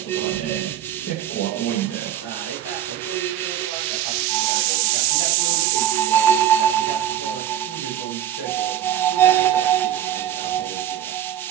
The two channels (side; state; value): left; quieter; 11.0 dB